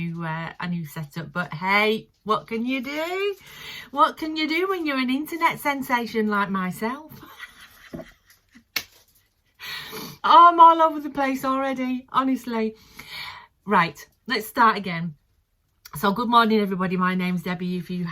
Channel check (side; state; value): both; identical; correlation 1.00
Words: setup, but hey, what can you do? What can you do when you're an internet sensation like myself? Oh, I'm all over the place already, honestly. Right, let's start again. So good morning everybody, my name's Debbie, if we